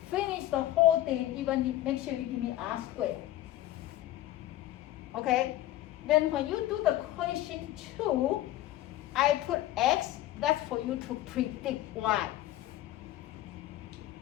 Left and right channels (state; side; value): quieter; right; 14.3 dB